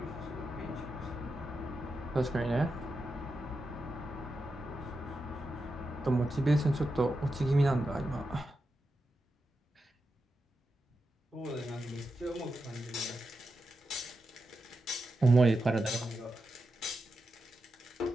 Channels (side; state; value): both; normal; correlation 0.88